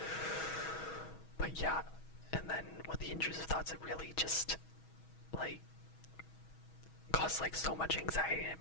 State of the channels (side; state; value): right; late; 6.2 ms